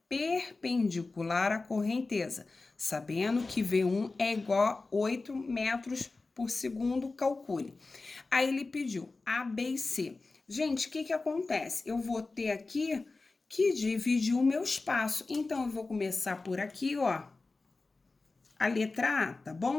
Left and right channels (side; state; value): right; quieter; 3.6 dB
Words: perpendicular à correnteza, sabendo que V1 é igual a 8 metros por segundo, calcule. Aí ele pediu A, B e C. Gente, o que acontece? Eu vou ter aqui que dividir o meu espaço. Então, eu vou começar por aqui, ó, a letra A, tá